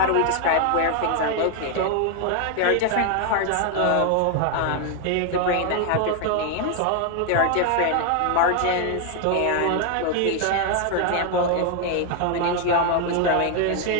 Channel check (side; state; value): both; different; correlation 0.01